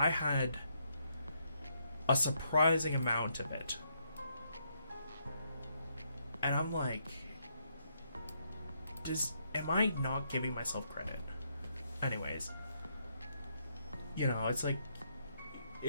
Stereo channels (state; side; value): inverted; both; correlation -0.76